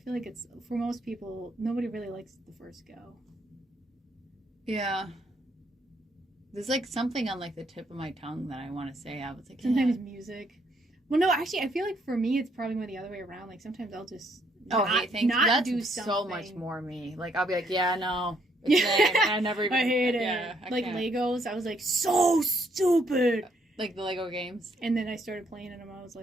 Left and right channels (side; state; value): both; normal; correlation 0.71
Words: like it's for most people. Nobody really likes the first go. Yeah. There's something on the tip of my tongue that I want to say. I was like, sometimes music. Well, no, actually, I feel like for me, it's probably more the other way around. Sometimes I'll just hate things. That's do something. So much more me. I'll be like, yeah, no. It's lame. And I never even. I hate it. Yeah, I can't. Legos. I was like, so stupid. The Lego games. And then I started playing them. I was